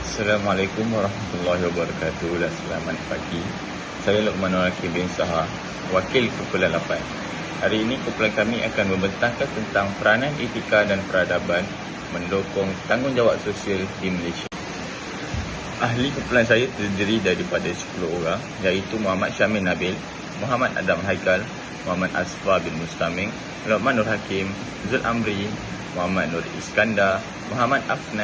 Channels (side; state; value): both; identical; correlation 1.00